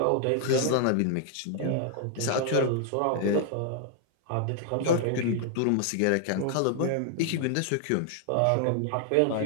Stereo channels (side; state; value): both; different; correlation 0.00